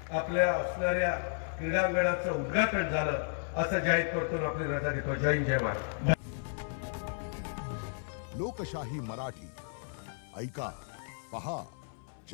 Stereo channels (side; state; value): right; silent; 56 dB below the other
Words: आपल्या असणाऱ्या क्रीडांगणाचं उद्घाटन झालं असं जाहीर करतो, आपली रजा देतो। जय हिंद, जय महाराष्ट्र। लोकशाही मराठी ऐका, पहा,